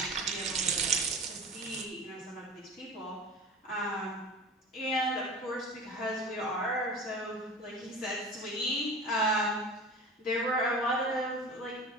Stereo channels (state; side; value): normal; both; correlation 0.35